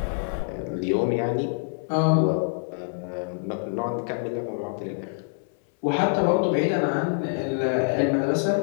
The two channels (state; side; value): silent; right; 61 dB below the other